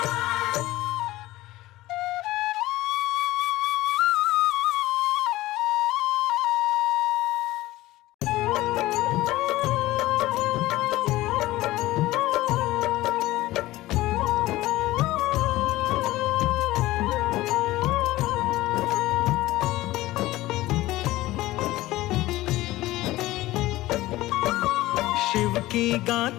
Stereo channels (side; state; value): right; quieter; 17.4 dB